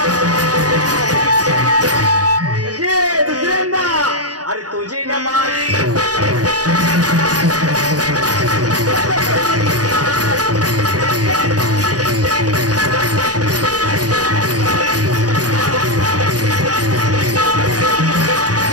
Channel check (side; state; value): left; late; 0.68 ms